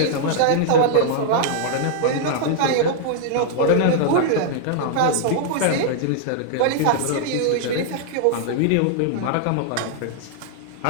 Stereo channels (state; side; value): different; both; correlation -0.01